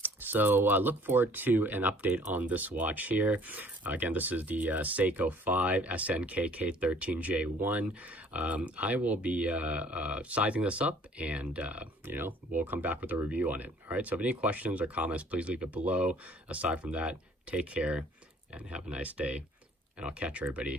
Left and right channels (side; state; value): both; normal; correlation 0.56